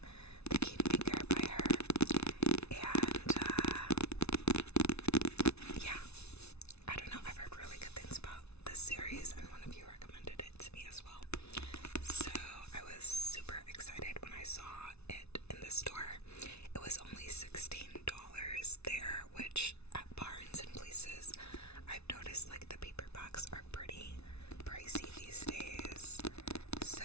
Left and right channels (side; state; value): right; late; 0.80 ms